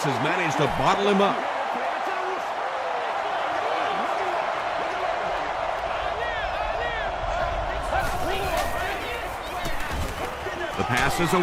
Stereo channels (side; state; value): both; identical; correlation 1.00